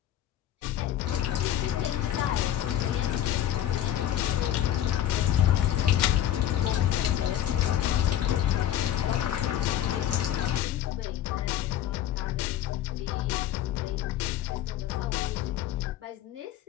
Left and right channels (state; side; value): quieter; right; 11.7 dB